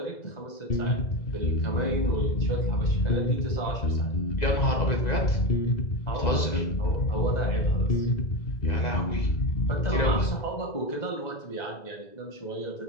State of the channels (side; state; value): right; late; 2.0 ms